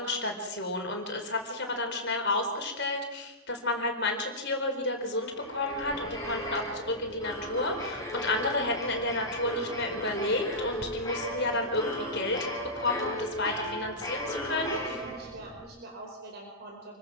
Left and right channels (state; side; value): normal; both; correlation -0.14